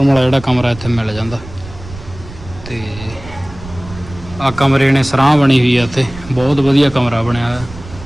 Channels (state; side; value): noise; right; rumble, 16 dB below the sound